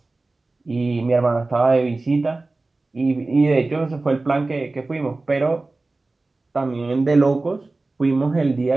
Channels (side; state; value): left; quieter; 3.3 dB